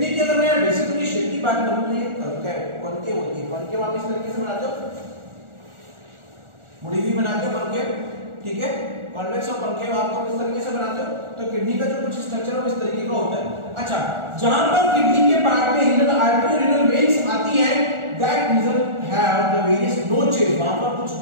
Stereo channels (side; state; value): left; late; 1.4 ms